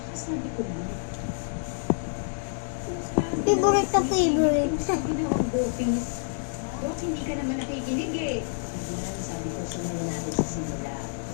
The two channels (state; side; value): silent; right; digital silence